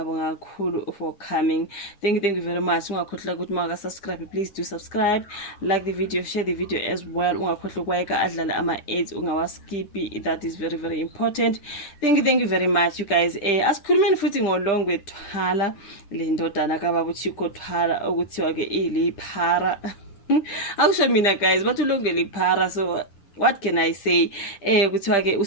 kakhulu for coming. Thank you very much. Ungakhohlwa ukuthi maka subscribe, please do subscribe, like the video, share the video as well. Ungakhohlwa ukwayeka adlala ama ads ungawaskipi, that is very important. Thank you very much you guys. Asikhulumeni futhi ngolongwe Thwala, le ndodana kaBaba uChicco Thwala okuthiwa ke iliphara. Akusho mina guys, bathi ulongwe liphara, so what can I say? Kuthiwa ke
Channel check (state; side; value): late; right; 10 ms